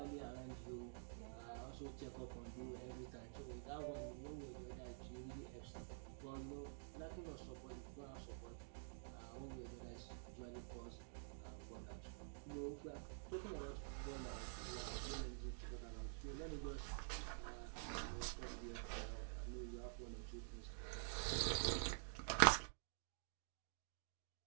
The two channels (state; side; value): silent; left; digital silence